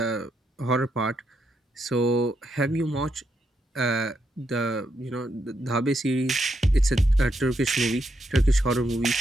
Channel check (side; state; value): both; normal; correlation 0.80